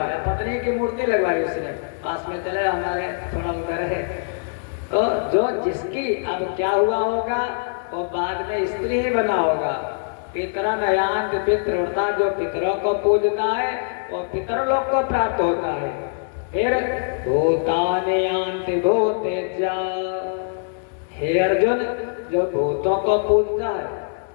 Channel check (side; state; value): right; silent; 64 dB below the other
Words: पत्नी की मूर्ति लगवाई उसने, पास में चले हमारे थोड़ा उधर है। तो जो जिसकी, अब क्या हुआ होगा, वो बाद में स्त्री ही बना होगा। पितरन यान्ति पितृव्रता, जो पितरों को पूजता है वो पितरलोक को प्राप्त होता है। फिर भूतानि यान्ति भूतेज्या, हे अर्जुन, जो भूतों को पूजता है,